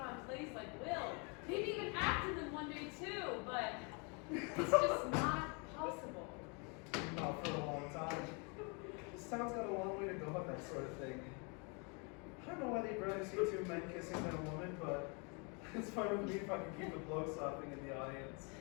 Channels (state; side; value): quieter; right; 33.8 dB